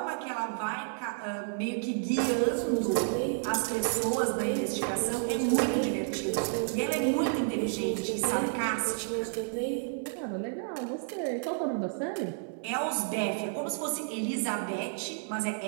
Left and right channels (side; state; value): left; silent; 56 dB below the other